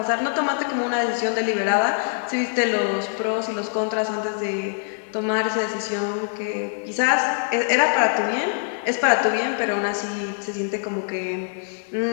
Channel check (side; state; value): right; silent; digital silence